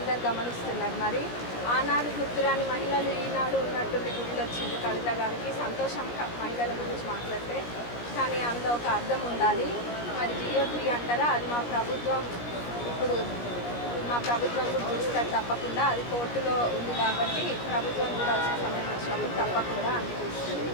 గమనిస్తున్నారు. మరి ఆనాడు గుర్తురాని మహిళలు ఈనాడు ఉన్నట్టుండి గుర్తొచ్చింది కవిత గారికి. సంతోషం మహిళల గురించి మాట్లాడితే, కానీ అందులో ఒక అర్థం ఉండాలి. మరి జియో 3 అంటారా, అది మా ప్రభుత్వం కూడా చూస్తారు తప్పకుండా. అది కోర్టులో ఉంది కాబట్టి ప్రభుత్వం కూడా సమయం వచ్చినప్పుడు తప్పకుండా అన్ని చూస్తుంది.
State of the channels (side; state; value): right; late; 17 ms